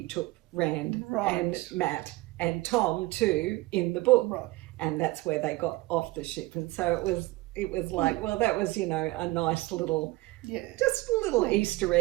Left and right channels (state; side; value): quieter; left; 20.4 dB